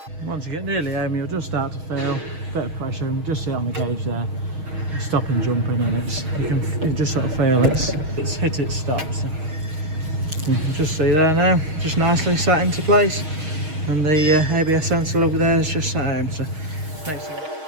Once you get nearly home, you'll just start to feel a bit of pressure, and just see it on the gauge there. Stop and jumping, and you just sort of feel it's hit its stop. So you can just see there now, just nicely sat into place, and the ABS sensor over there is just sat home. So next thing.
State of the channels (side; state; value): left; late; 6.4 ms